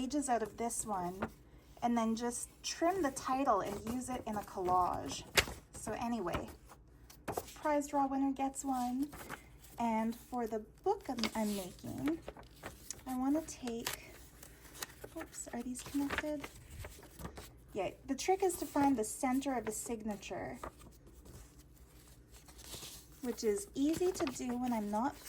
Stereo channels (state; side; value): identical; both; correlation 1.00